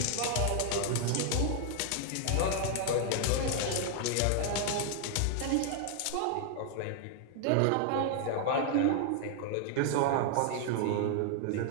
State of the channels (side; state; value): both; different; correlation 0.00